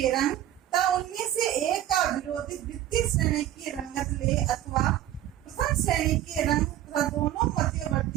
रंग तथा उनमें से एक का विरोधी द्वितीय श्रेणी की रंगत ले अथवा प्रथम श्रेणी के रंग तथा दोनों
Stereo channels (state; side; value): quieter; left; 12.5 dB